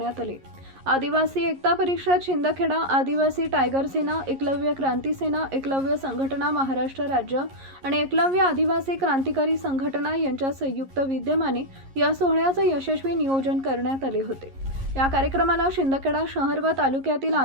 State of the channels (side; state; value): left; late; 11 ms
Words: आले। आदिवासी एकता परिषद शिंदखेडा, आदिवासी टायगर सेना, एकलव्य क्रांती सेना, एकलव्य संघटना महाराष्ट्र राज्य आणि एकलव्य आदिवासी क्रांतिकारी संघटना यांच्या संयुक्त विद्यमाने या सोहळ्याचं यशस्वी नियोजन करण्यात आले होते। या कार्यक्रमाला शिंदखेडा शहर व तालुक्यातील